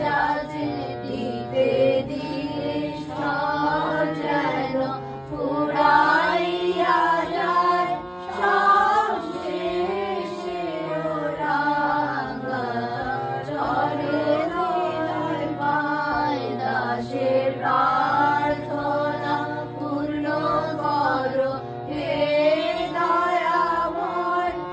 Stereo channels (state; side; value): identical; both; correlation 1.00